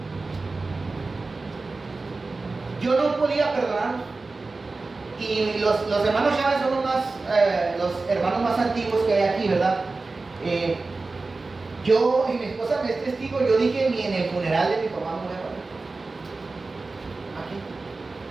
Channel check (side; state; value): left; quieter; 3.7 dB